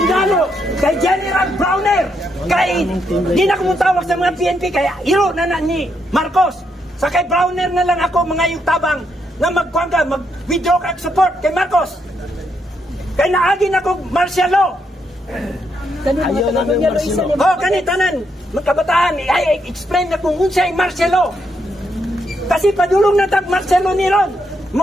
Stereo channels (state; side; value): normal; both; correlation 0.78